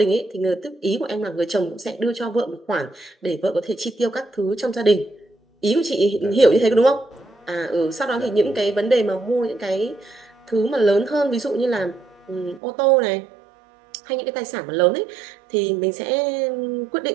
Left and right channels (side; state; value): left; drops out; at 12.6 s